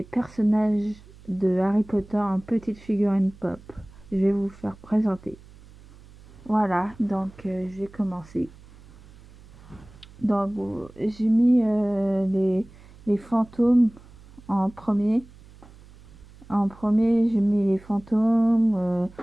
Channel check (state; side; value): noise; right; hum, 23 dB below the sound